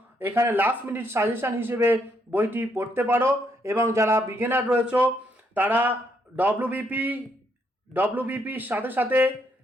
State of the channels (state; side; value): normal; both; correlation 0.74